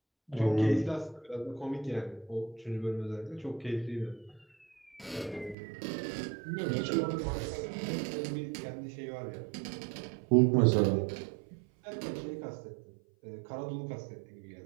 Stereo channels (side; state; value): left; drops out; at 5.6 s